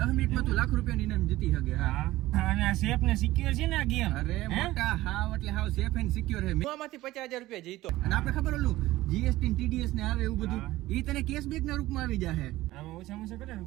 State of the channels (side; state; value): left; quieter; 16.9 dB